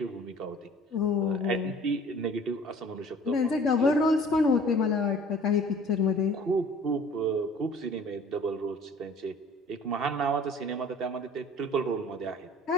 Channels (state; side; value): normal; both; correlation 0.49